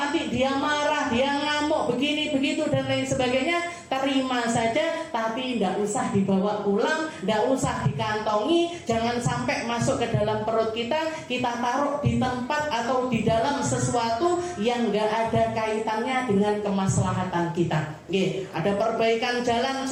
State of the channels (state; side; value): identical; both; correlation 1.00